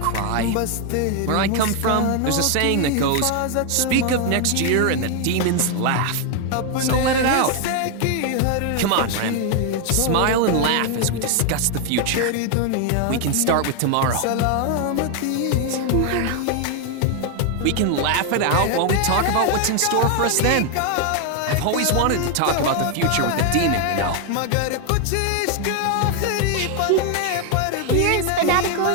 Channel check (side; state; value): both; different; correlation 0.01